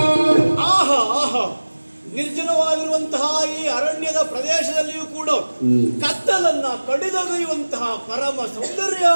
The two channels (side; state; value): both; inverted; correlation -1.00